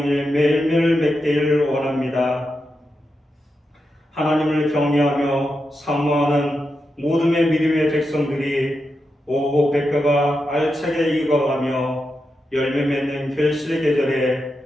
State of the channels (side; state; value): both; normal; correlation 0.87